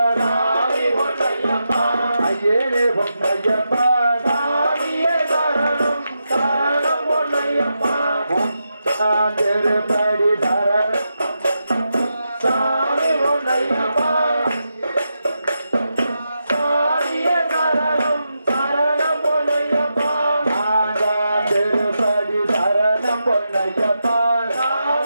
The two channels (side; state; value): both; inverted; correlation -0.87